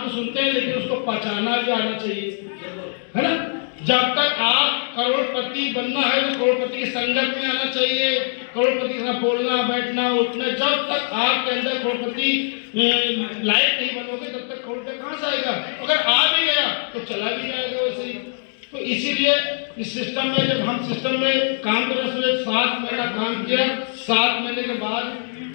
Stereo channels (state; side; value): silent; right; 64 dB below the other